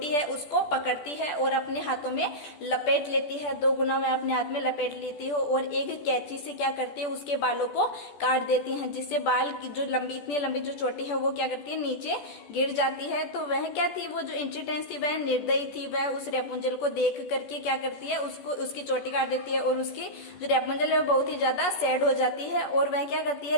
है उसको पकड़ती है और अपने हाथों में लपेट लेती है। 2 गुना वह अपने हाथ में लपेट लेती है और एक कैंची से क्या करती है, उसके बालों को काट देती है, जिससे बाल की जो इतनी लंबी जो चोटी है वो क्या करती है, नीचे गिर जाती है। तो वह क्या थी, वो जो इंचिट्रेंस थी वह निर्दयी थी, वह उस रेपुंजल को देख करके क्या करती है, उसकी चोटी काट देती है और उसकी जो रेपुंजल है वो बहुत ही ज्यादा सैड हो जाती है और वह क्या करती है,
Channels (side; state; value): right; late; 14 ms